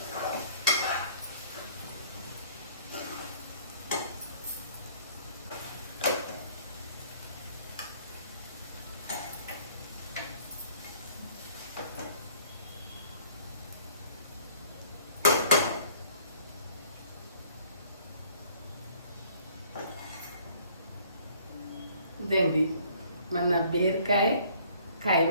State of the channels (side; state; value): both; inverted; correlation -0.57